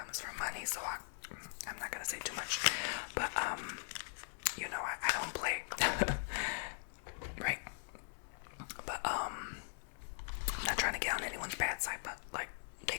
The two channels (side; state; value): right; silent; digital silence